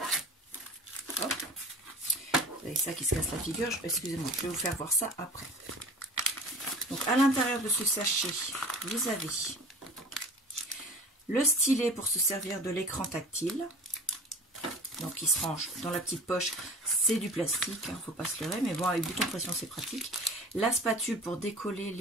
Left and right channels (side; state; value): both; normal; correlation 0.40